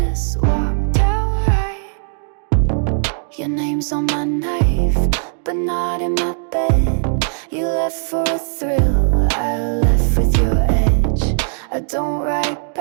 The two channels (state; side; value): silent; left; digital silence